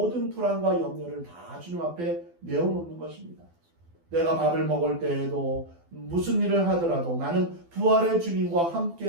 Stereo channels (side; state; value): left; late; 12 ms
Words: 불안과 염려를 다 주님 앞에 내어놓는 것입니다. 내가 밥을 먹을 때에도 무슨 일을 하더라도 나는 부활의 주님과